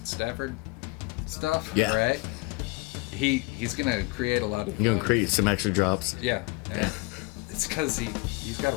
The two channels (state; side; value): quieter; right; 25.6 dB